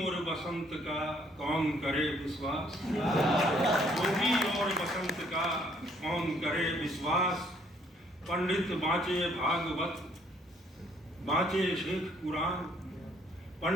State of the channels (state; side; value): normal; both; correlation 0.65